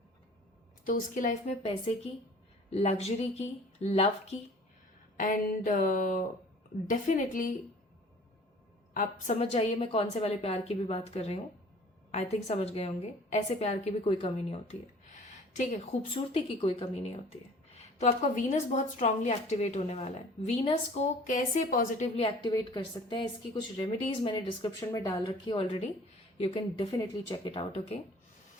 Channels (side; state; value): both; normal; correlation 0.49